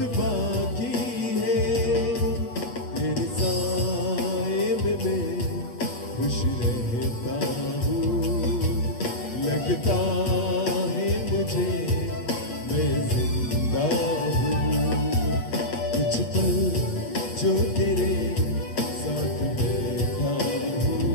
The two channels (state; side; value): late; right; 7.8 ms